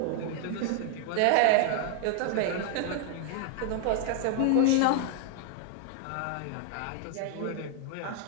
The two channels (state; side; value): different; both; correlation 0.00